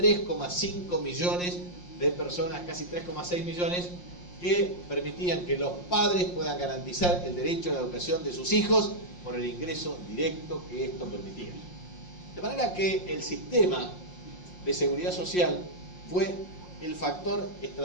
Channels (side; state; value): right; late; 5.6 ms